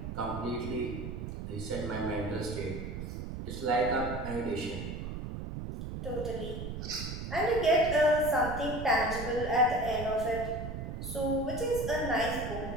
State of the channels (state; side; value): noise; right; rumble, 6 dB below the sound